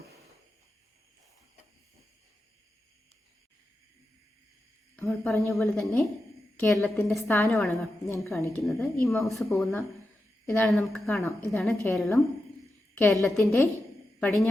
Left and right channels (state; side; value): normal; both; correlation 0.90